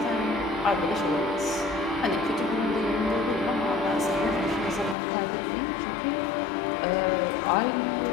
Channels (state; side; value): drops out; right; at 5.0 s